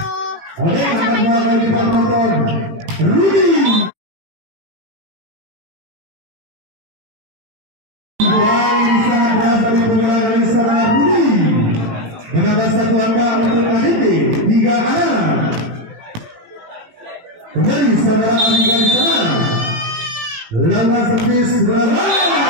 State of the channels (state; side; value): late; left; 18 ms